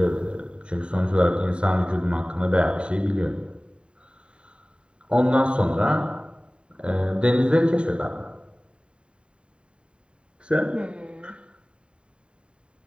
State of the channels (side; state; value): left; late; 0.054 ms